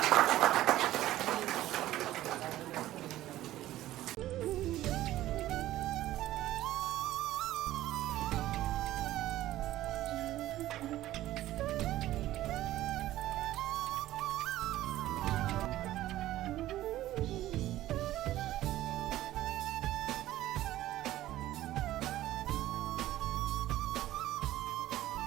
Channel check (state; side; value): quieter; left; 14.7 dB